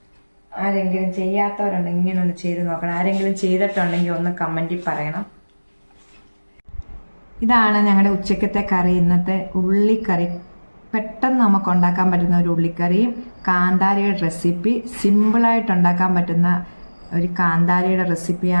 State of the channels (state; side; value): inverted; both; correlation -1.00